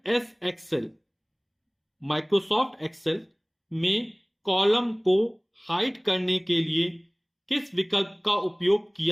एक्सेल माइक्रोसॉफ्ट एक्सेल में कॉलम को हाइड करने के लिए किस विकल्प का उपयोग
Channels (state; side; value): identical; both; correlation 1.00